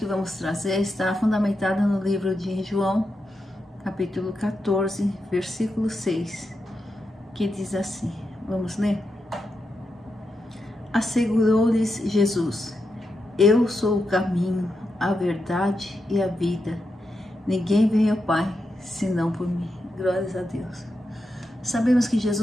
vamos trazer está fundamentada no livro de João, capítulo 14, versículo 6, que diz assim. Vamos ler? Assegurou-lhes Jesus: Eu sou o caminho, a verdade e a vida. Ninguém vem ao Pai, senão por mim. Glórias a Deus. Sabemos que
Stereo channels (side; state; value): both; normal; correlation 0.86